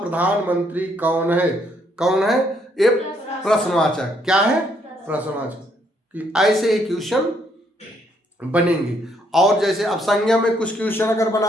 कौन है, कौन है, ये प्रश्नवाचक, क्या है, प्रश्नवाचक। ऐसे ही क्वेश्चन बनेंगे। और जैसे अब संज्ञा में कुछ क्वेश्चन अगर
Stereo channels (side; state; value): both; normal; correlation 0.71